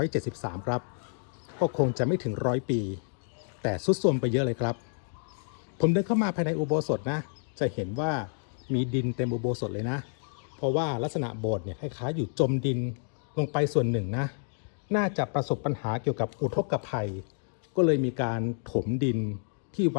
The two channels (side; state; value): right; silent; 57 dB below the other